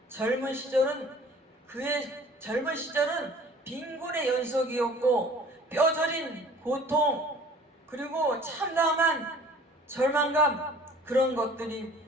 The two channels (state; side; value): normal; both; correlation 0.50